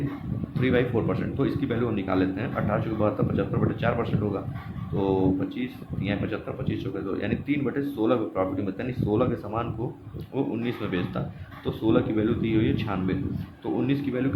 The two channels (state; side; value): identical; both; correlation 1.00